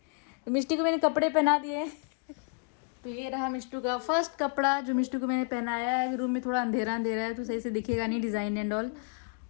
तो मिष्टी को मैंने कपड़े पहना दिए। तो ये रहा मिष्टू का फर्स्ट कपड़ा जो मिष्टू को मैंने पहनाया है। रूम में थोड़ा अंधेरा अंधेरा है तो सही से दिखेगा नहीं डिज़ाइन एंड ऑल,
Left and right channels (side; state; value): right; quieter; 37.1 dB